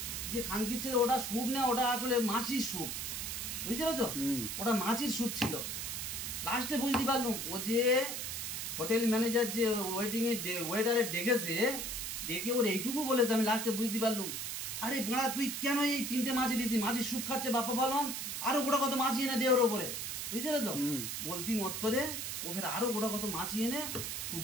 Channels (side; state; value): right; noise; hiss, 4 dB below the sound